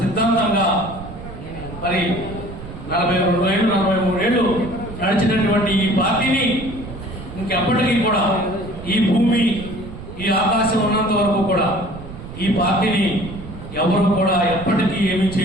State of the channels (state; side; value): noise; right; rumble, 13 dB below the sound